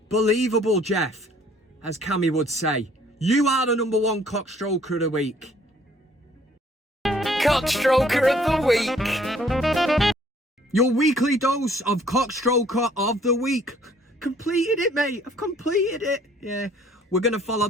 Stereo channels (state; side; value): normal; both; correlation 0.59